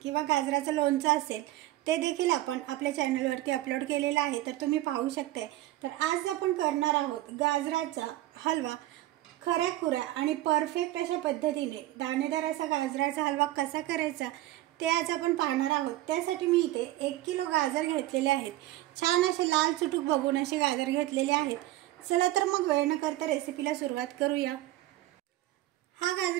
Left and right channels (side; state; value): left; quieter; 15.9 dB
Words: किंवा गाजराचं लोणचं असेल ते देखील आपण आपल्या चॅनलवरती अपलोड केलेला आहे, तर तुम्ही पाहू शकता। तर आज आपण करणार आहोत गाजराचा हलवा। खऱ्याखुऱ्या आणि परफेक्ट अशा पद्धतीने दाणेदार असा गाजराचा हलवा कसा करायचा ते आज आपण पाहणार आहोत। त्यासाठी मी इथे 1 किलो गाजर घेतलेले आहेत। छान असे लाल चुटूक बघून असे गाजर घेतलेले आहेत। चला तर मग वेळ न करता रेसिपीला सुरुवात करूया। हा